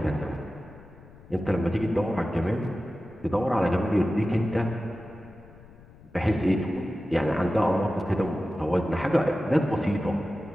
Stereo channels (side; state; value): left; noise; rumble, 22 dB below the sound